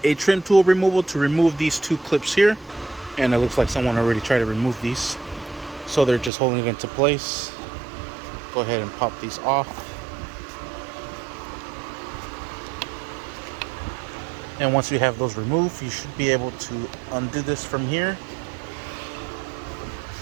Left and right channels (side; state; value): left; drops out; at 6.3 s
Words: a trim tool removal to remove these two clips here. And it looks like someone already tried to remove these, so they're just holding it into place. Go ahead and pop these off. And once you have those removed, you should be able to undo this from here.